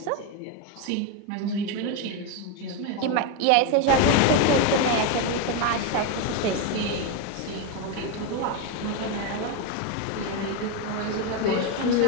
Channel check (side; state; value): both; different; correlation 0.03